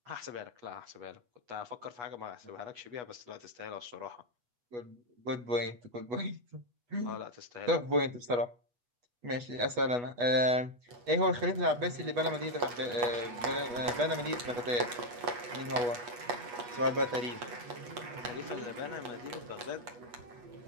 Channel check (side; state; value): left; late; 8.2 ms